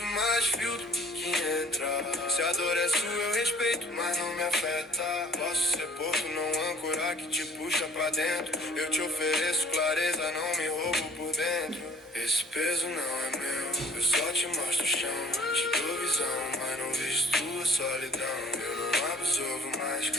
mais filtro que entra. Se a dor é sua eu respeito, mas não me afeta. Posso ser porto, não âncora que te puxa pra dentro. Eu te ofereço clareza, não me roubo por dentro. Esse peso não é meu, eu só te mostro o chão. Te dou visão, mas não visto tua solidão. Eu não absorvo mais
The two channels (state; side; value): normal; both; correlation 0.51